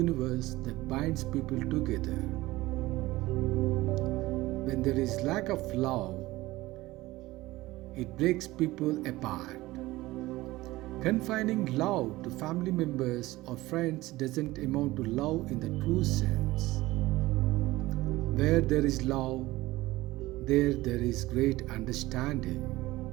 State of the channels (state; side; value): quieter; left; 18.5 dB